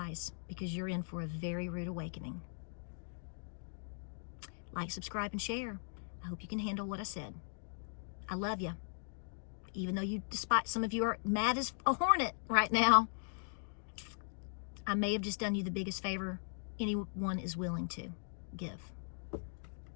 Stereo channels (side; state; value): right; silent; digital silence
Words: because you're in for a very rude awakening. Like, subscribe, and share. I hope you can handle what I said. I love you. Even though despite some of you are mad as a hornet right now, I may have just done you the biggest favor anyone is willing to give.